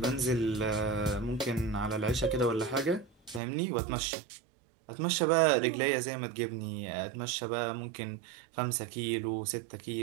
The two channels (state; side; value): drops out; left; at 3.4 s